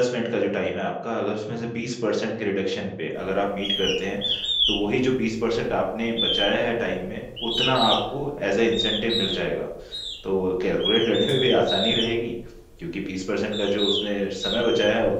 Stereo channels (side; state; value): both; identical; correlation 1.00